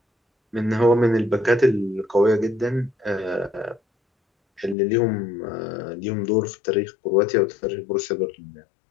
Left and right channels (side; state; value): right; drops out; at 4.8 s